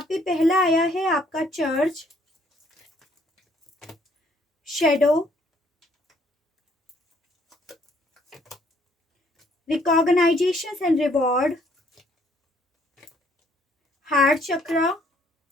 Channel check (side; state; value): both; normal; correlation 0.64